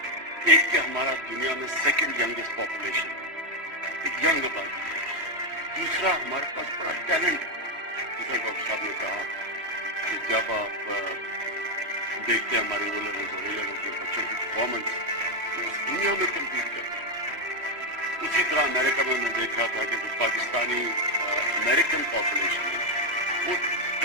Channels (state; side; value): late; left; 3.1 ms